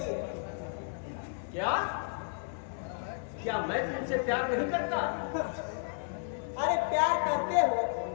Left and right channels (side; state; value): right; silent; 56 dB below the other